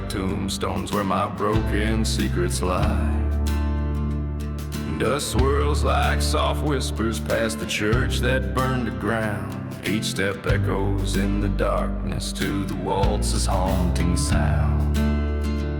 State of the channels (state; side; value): identical; both; correlation 1.00